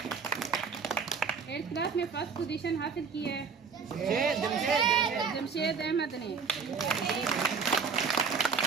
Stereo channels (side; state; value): left; quieter; 5.6 dB